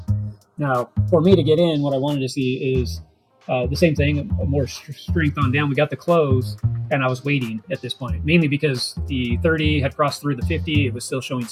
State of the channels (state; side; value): identical; both; correlation 1.00